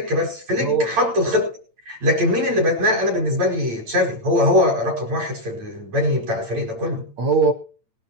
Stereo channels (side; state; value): left; late; 8.8 ms